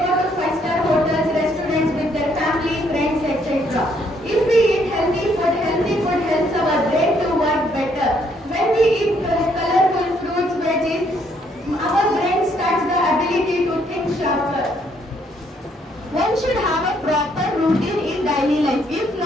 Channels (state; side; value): normal; both; correlation 0.69